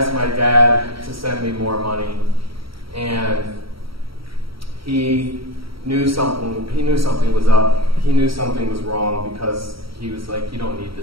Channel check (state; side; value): late; left; 0.75 ms